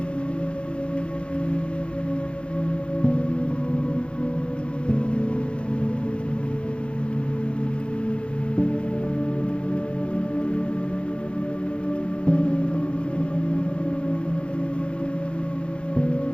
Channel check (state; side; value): late; right; 0.057 ms